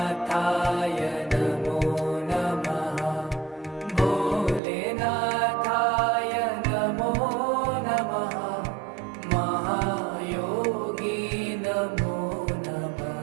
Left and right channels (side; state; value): left; drops out; at 4.6 s